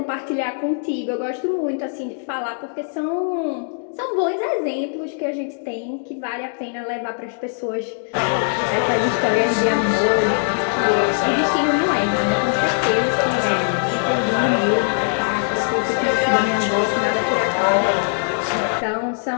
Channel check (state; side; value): silent; right; digital silence